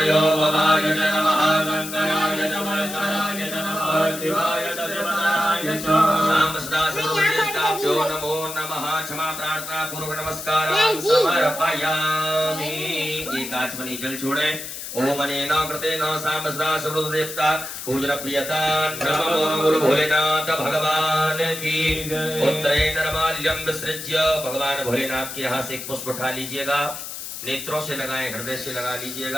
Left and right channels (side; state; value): left; noise; hiss, 9 dB below the sound